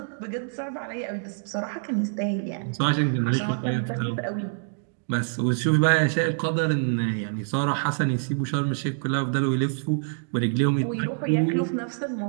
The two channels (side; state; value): left; silent; digital silence